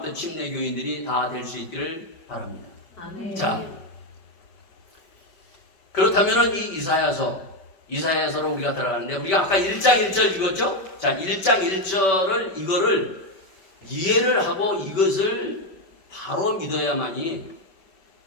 침례 교인들이 다 될 수 있기를 바랍니다. 아멘. 자, 그렇다면은 이 이사야서로 우리가 들어가는데 우리가 아까 1장 1절 읽었죠? 자, 1장 1절을 이거를 이해를 하고 이것을 바로 믿어야만이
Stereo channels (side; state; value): right; late; 5.3 ms